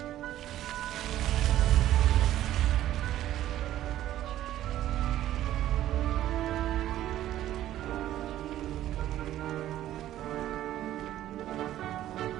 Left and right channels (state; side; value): quieter; left; 13.1 dB